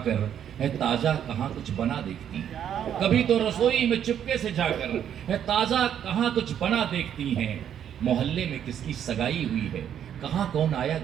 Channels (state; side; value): quieter; left; 9.4 dB